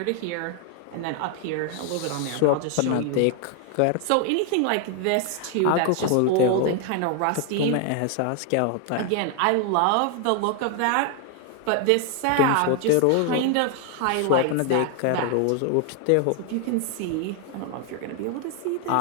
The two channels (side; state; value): both; different; correlation 0.00